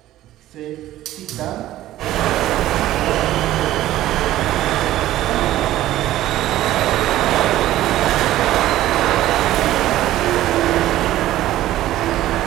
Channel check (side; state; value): left; quieter; 14.4 dB